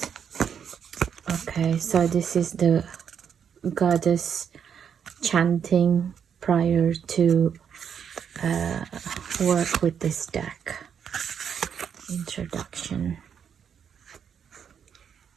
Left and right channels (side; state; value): left; quieter; 7.7 dB